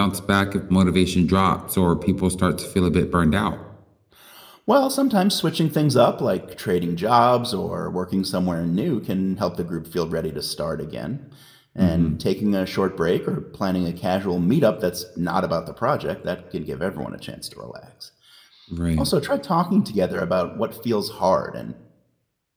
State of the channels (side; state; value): both; identical; correlation 1.00